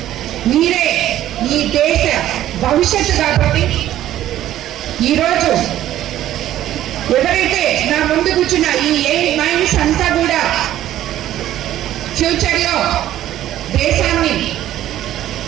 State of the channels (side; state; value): left; quieter; 12.9 dB